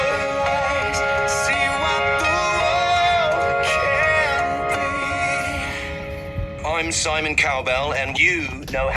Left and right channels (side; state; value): both; identical; correlation 1.00